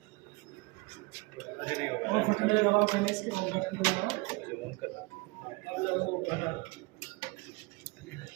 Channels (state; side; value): quieter; left; 25.6 dB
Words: मुझे नहीं होगा। और फटने लगाओ पहले इसके बटन लगाओ। मुझे ऑन करना, अब लगाओ बटन।